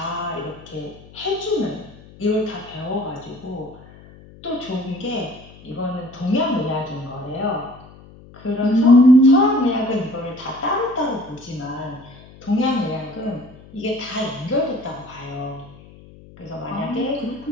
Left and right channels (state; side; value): noise; left; hum, 21 dB below the sound